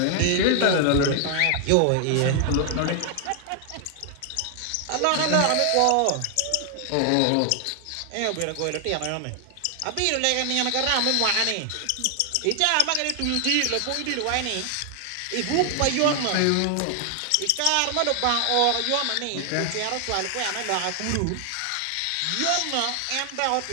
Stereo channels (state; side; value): different; both; correlation 0.00